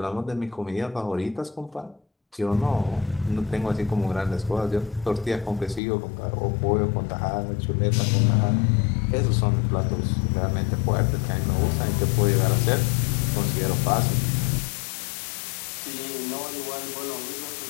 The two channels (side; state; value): right; drops out; at 5.8 s